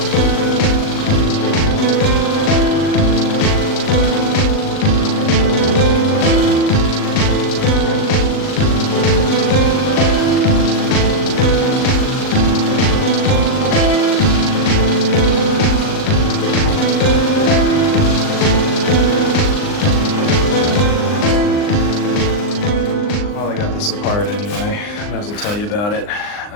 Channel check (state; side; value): late; right; 39 ms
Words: Apart anyway, I might as well tell you about it.